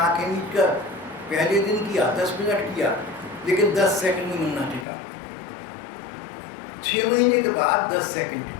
मीट कर पहले दिन किया, 10 मिनट किया, लेकिन 10 सेकंड में मन ना टिका। 6 महीने के बाद 10 सेकंड टिक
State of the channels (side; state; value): right; drops out; at 4.9 s